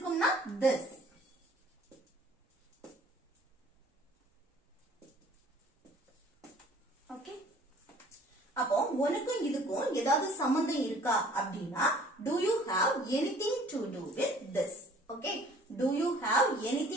this. ஓகே, அப்போ உனக்கும் இதுக்கும் ஏதாவது சம்பந்தம் இருக்கா அப்படின்னா do you have anything to do with this. Okay, do you have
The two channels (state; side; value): normal; both; correlation 0.53